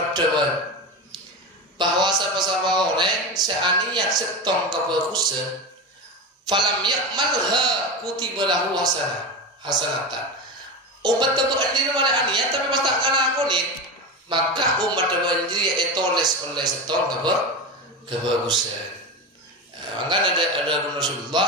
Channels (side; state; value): both; normal; correlation 0.21